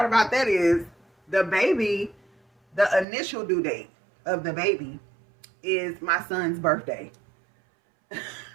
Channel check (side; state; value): left; drops out; at 3.1 s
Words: about that is the initial due date of the baby is my son's birthday.